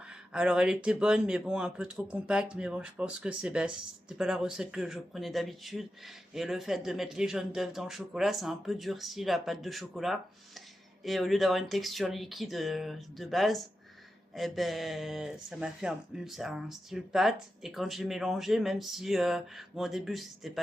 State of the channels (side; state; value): both; normal; correlation 0.90